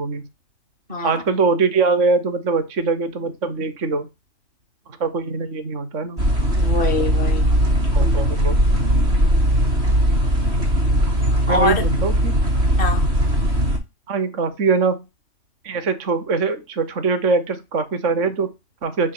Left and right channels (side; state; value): left; late; 3.0 ms